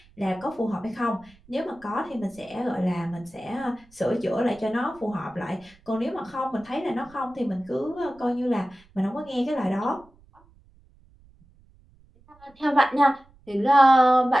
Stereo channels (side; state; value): right; noise; rumble, 28 dB below the sound